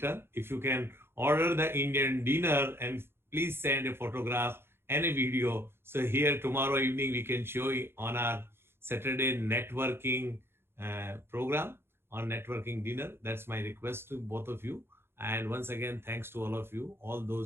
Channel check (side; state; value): left; late; 0.11 ms